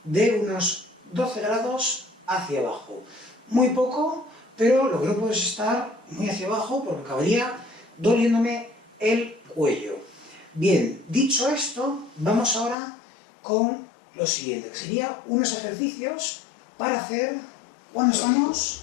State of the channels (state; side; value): drops out; right; at 12.8 s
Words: de unos 12 grados hacia abajo. Muy poco, pero lo que no puedo es estar muy hacia abajo porque acabaría doliéndome el cuello. Bien, dicho esto, vamos ahora con lo siguiente, que sería unos ejercicios para hacer cuando estamos